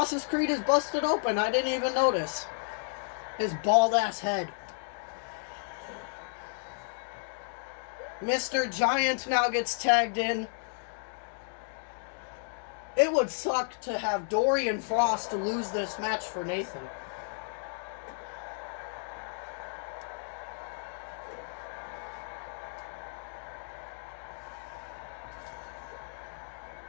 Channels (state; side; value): silent; right; digital silence